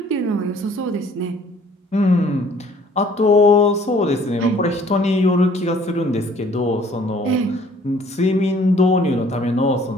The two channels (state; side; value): normal; both; correlation 0.57